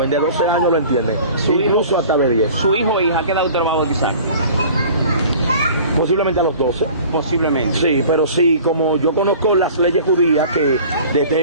de 12 años lo entienden, incluso hasta de 10. ¿Su hijo o hija qué edad usted lo va a bautizar? Posiblemente a los 12. Posiblemente. Sí, pero sí, como yo conozco las leyes judías, que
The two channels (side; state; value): both; inverted; correlation -0.45